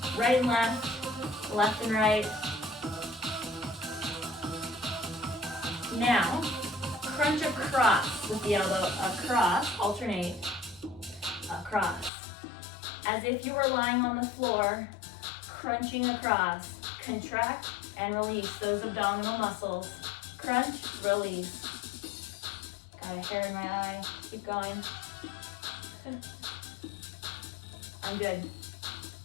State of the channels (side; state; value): right; drops out; at 12.1 s